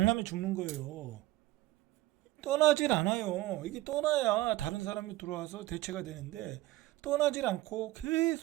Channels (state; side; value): quieter; left; 17.3 dB